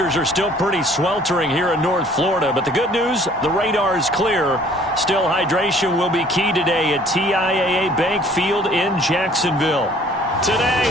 are still pretty sweltering here in North Florida. But the good news, the radar is clear. Still, hydration will be key today at TIAA Bank Field in Jacksonville. Today,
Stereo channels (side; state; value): both; normal; correlation 0.55